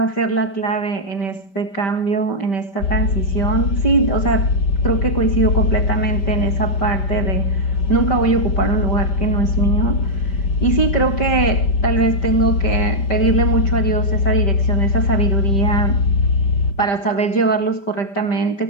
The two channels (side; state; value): right; late; 5.1 ms